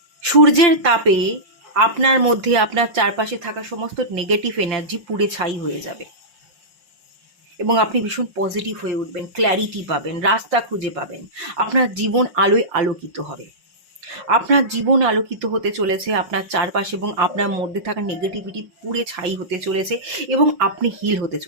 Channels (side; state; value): left; late; 5.5 ms